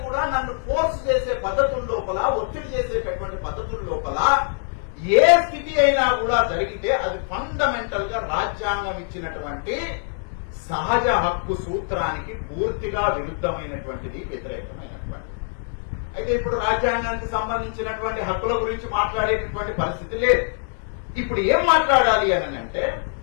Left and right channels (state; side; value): silent; right; 63 dB below the other